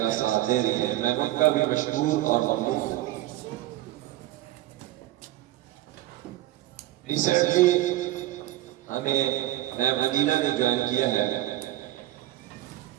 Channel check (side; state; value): left; quieter; 15.5 dB